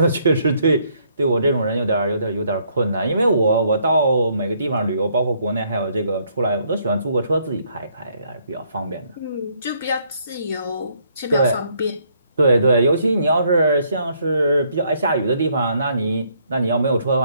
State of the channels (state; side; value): inverted; both; correlation -0.69